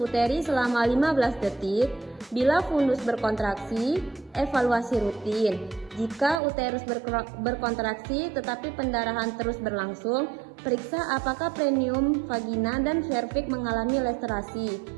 selama 15 detik. Bila fundus berkontraksi, evaluasi rutin. Jika uterus berkontraksi tetapi pendarahan terus berlangsung, periksa apakah perineum, vagina, dan serviks mengalami laserasi.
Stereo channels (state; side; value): drops out; left; at 6.4 s